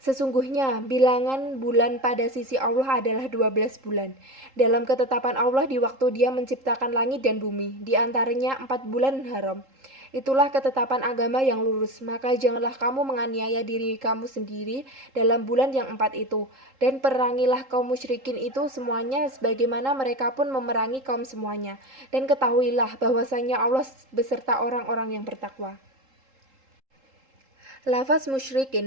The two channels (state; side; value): late; left; 3.8 ms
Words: sesungguhnya bilangan bulan pada sisi Allah adalah 12 bulan dalam ketetapan Allah di waktu Dia menciptakan langit dan bumi, di antaranya 4 bulan haram. Itulah ketetapan agama yang lurus, maka janganlah kamu menganiaya diri kamu sendiri dalam bulan yang 4 itu, dan perangilah kaum musyrikin itu semuanya sebagaimana mereka pun memerangi kaum semuanya, dan ketahuilah bahwasanya Allah beserta orang-orang yang bertakwa. Lafaz